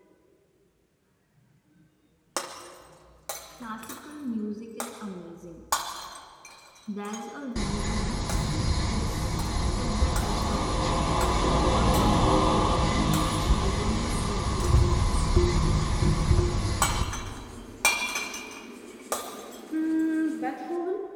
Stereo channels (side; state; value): both; identical; correlation 1.00